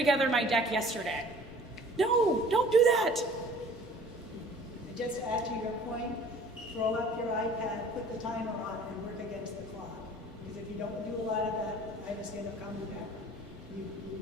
my deck yesterday. No, don't do that. And just to add to your point, throw up your iPad, put the timer on, and work against the clock. Because if you don't do a lot of that, I just end up coming back.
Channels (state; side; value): normal; both; correlation 0.50